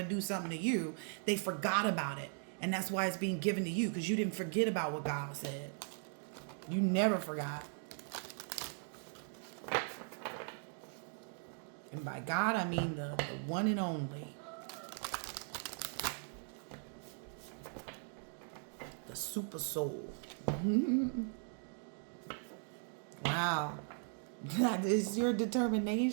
do something to you. They forgot about it. And that's why it's being given to you, because you didn't forget about what God said. You never forgot. And by God, I mean the one and only. The super soul. Wow. That is your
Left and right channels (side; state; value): left; silent; 52 dB below the other